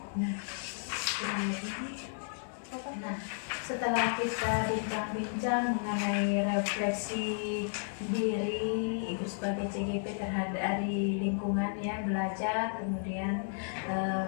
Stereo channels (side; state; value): right; silent; 56 dB below the other